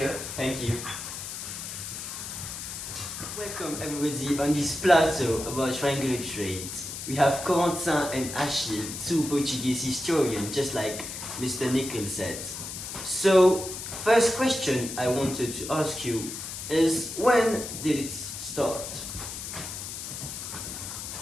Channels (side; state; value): left; noise; hiss, 7 dB below the sound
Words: Thank you. Welcome everybody on this plateau about triangular trade. We have Corentin and Achille, two Portuguese historians, just like Mr. Nickel said. So, first question I wanted to ask you is, when did it start?